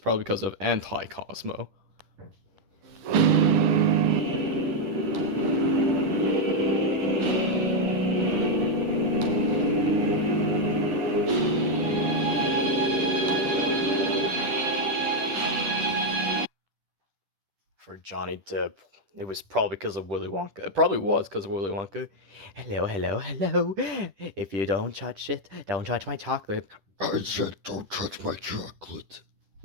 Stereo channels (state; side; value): late; left; 10 ms